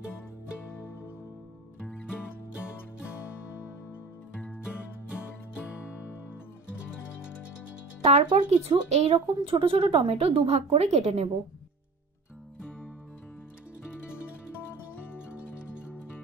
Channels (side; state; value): left; quieter; 3.9 dB